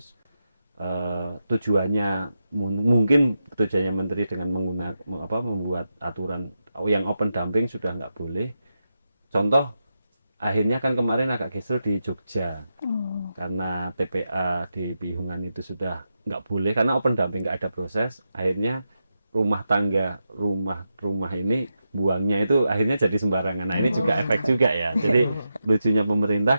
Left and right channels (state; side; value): inverted; both; correlation -0.87